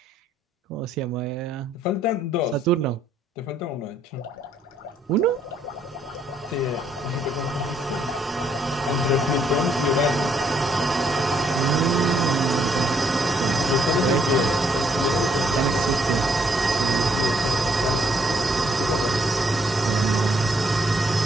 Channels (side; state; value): both; normal; correlation 0.70